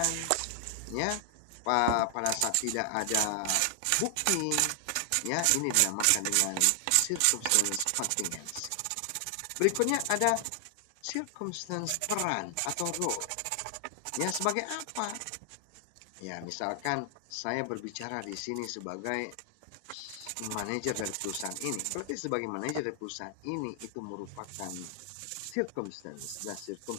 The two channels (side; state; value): both; different; correlation 0.00